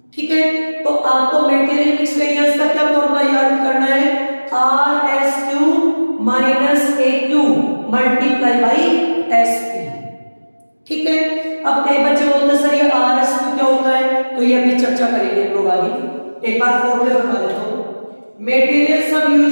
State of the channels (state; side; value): inverted; both; correlation -1.00